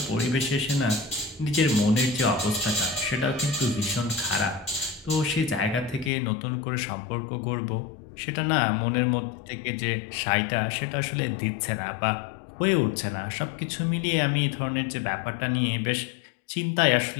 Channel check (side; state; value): right; drops out; at 6.1 s